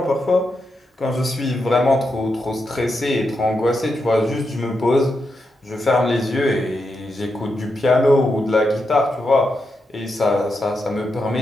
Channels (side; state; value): both; normal; correlation 0.85